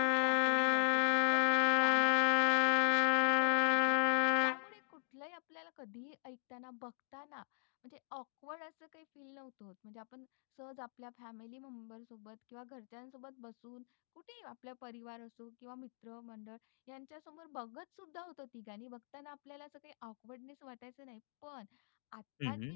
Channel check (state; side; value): silent; right; digital silence